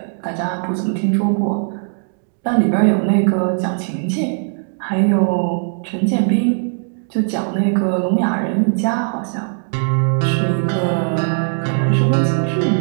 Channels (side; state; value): left; silent; 67 dB below the other